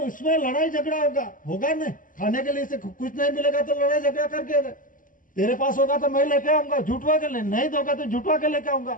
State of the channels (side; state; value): right; late; 0.39 ms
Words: इसमें लड़ाई झगड़ा होगा ना, खाने के लिए से कुछ नहीं मिलेगा तो लड़ाई झगड़ा करके तेरे पास होगा तो मैं लेके आऊंगा, झूठवा के नहीं दोगा तो झूठवा के लेके